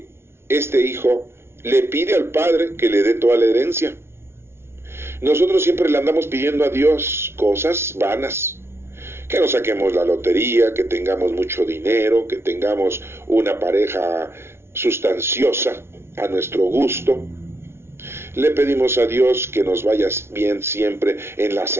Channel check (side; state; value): left; late; 0.12 ms